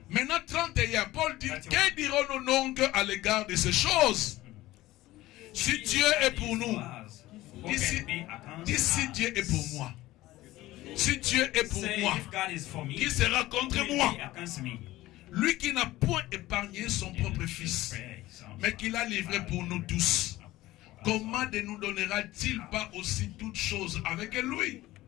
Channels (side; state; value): right; quieter; 17.0 dB